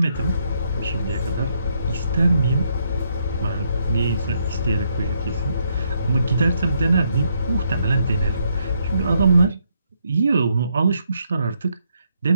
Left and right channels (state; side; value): inverted; both; correlation -0.75